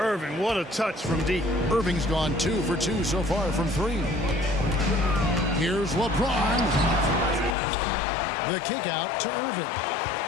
what a touch from deep. Irving's gone 2 for 2 so far from 3. Here's LeBron. The kick out to Irving.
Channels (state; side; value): drops out; right; at 7.6 s